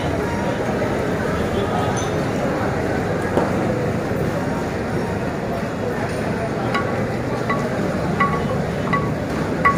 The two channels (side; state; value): both; identical; correlation 1.00